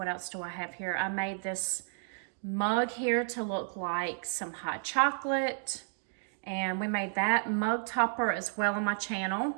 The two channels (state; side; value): silent; left; digital silence